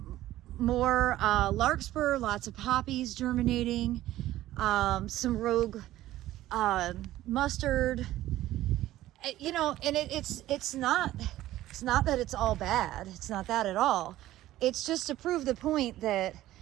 more larkspur, lots of poppies germinating, some rogue mustard, You know, and it's not that it's all bad. It's not that at all. It's just to prove the point that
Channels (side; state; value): left; quieter; 14.8 dB